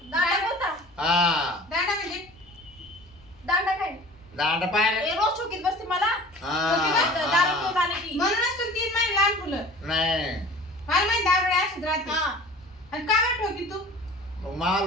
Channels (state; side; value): noise; left; hum, 29 dB below the sound